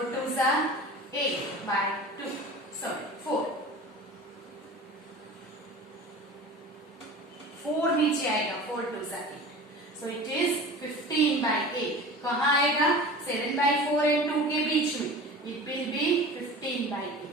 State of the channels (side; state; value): both; normal; correlation 0.37